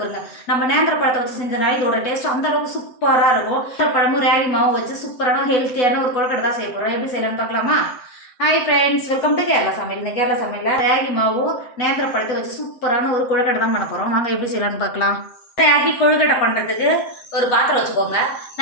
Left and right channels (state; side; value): late; right; 7.7 ms